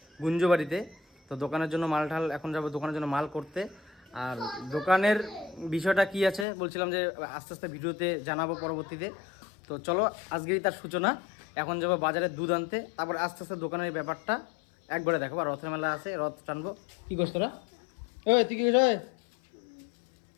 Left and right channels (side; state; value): right; drops out; at 6.5 s